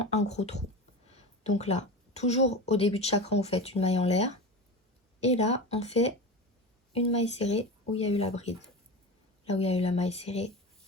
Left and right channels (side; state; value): both; normal; correlation 0.27